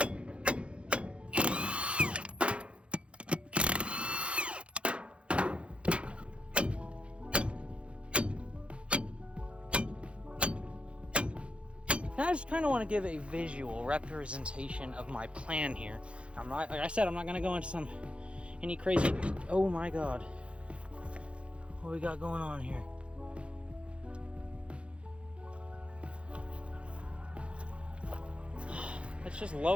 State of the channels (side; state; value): left; late; 0.059 ms